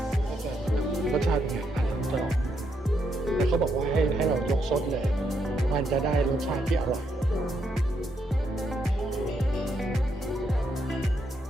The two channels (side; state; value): both; normal; correlation 0.78